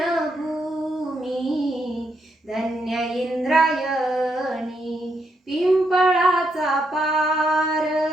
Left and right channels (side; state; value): both; normal; correlation 0.79